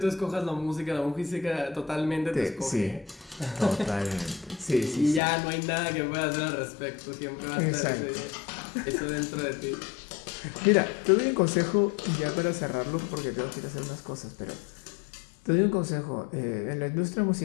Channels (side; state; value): right; drops out; at 5.2 s